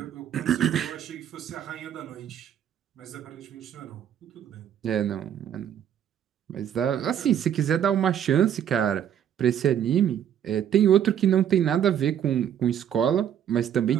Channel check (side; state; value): left; quieter; 9.6 dB